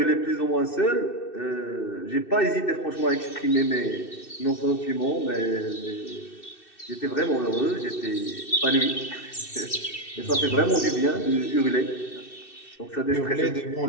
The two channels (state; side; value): late; right; 2.6 ms